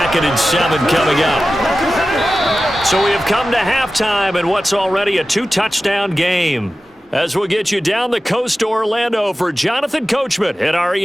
and 7 coming up. So we have come to halftime in what's already a 2-touchdown game. As we'll get you down the coast to Orlando for Jonathan Coachman at our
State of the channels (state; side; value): normal; both; correlation 0.94